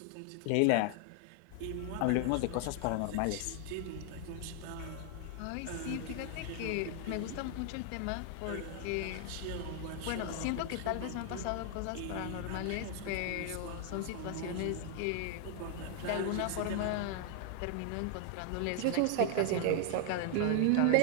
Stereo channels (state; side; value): different; both; correlation 0.00